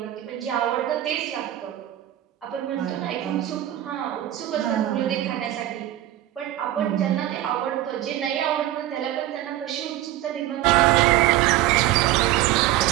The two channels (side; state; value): left; quieter; 13.9 dB